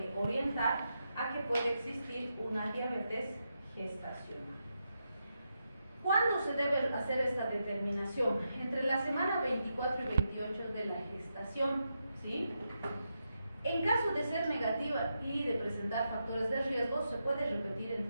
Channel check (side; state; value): both; inverted; correlation -0.85